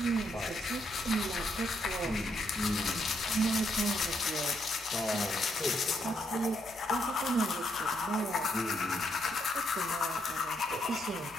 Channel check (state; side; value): normal; both; correlation 0.76